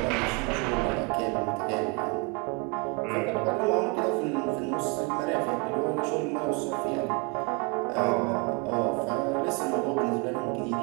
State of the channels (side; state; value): left; quieter; 30.3 dB